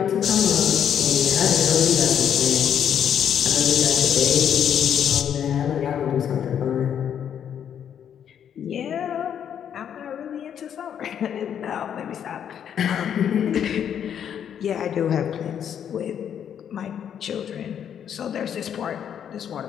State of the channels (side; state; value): right; quieter; 8.9 dB